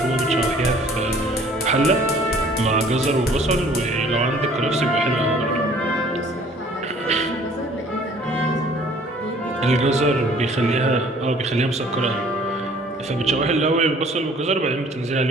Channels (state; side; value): normal; both; correlation 0.54